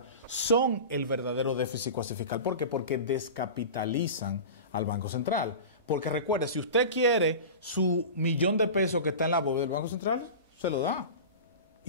son el verdadero déficit cuasifiscal. ¿Por qué? Porque descapitalizan al Banco Central. Porque recuerde, si usted quiere su $1.000.000 que está en la bóveda del Banco Central, se lo da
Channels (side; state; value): both; inverted; correlation -0.31